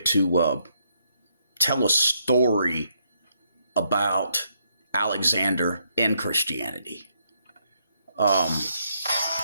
to tell a story about Alexander and Christianity. I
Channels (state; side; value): inverted; both; correlation -0.75